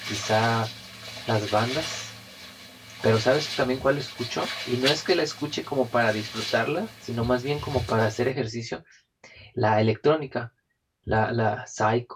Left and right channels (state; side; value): identical; both; correlation 1.00